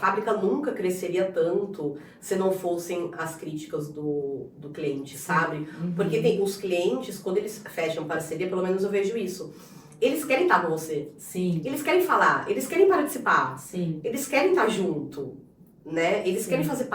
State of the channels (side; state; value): both; identical; correlation 1.00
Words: nunca cresceria tanto se não fossem as críticas do cliente, sabe? Uhum. Porque os clientes, quando eles fecham parceria, pelo menos eu vejo isso, eles querem estar com você. Sim. Eles querem falar, eles querem participar. Sim. Eles querem estar junto, né? Eles querem fazer